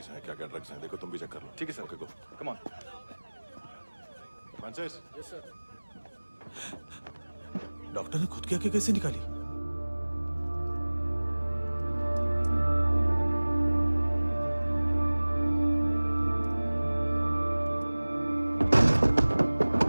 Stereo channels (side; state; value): both; inverted; correlation -1.00